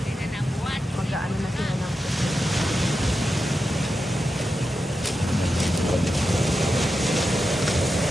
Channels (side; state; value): both; normal; correlation 0.89